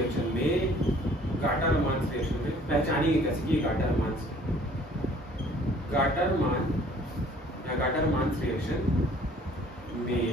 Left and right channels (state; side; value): normal; both; correlation 0.55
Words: में पहचानिए कैसे कि गाटर-मान